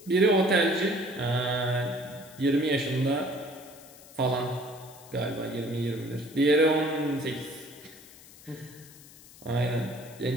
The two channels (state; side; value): noise; left; hiss, 21 dB below the sound